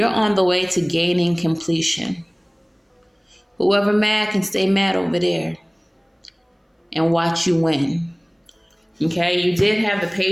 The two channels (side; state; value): both; identical; correlation 1.00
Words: on the way to gaining completion. Whoever mad can stay mad over there and watch you win. Okay, you did have the